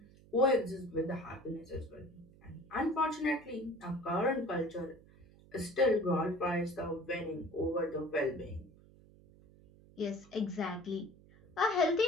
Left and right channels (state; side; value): noise; right; hum, 24 dB below the sound